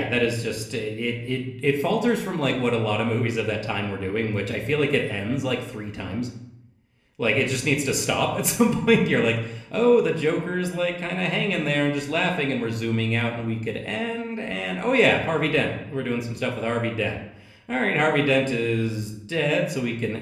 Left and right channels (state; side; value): identical; both; correlation 1.00